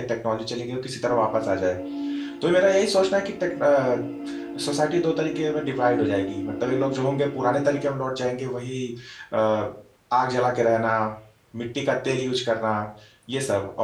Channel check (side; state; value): both; identical; correlation 1.00